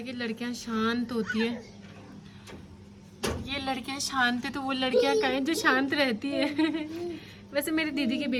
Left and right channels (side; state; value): both; identical; correlation 1.00